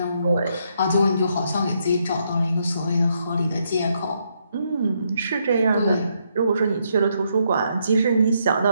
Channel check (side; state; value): both; inverted; correlation -0.76